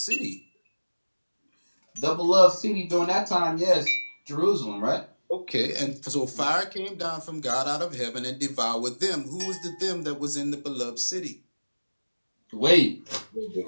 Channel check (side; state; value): both; inverted; correlation -1.00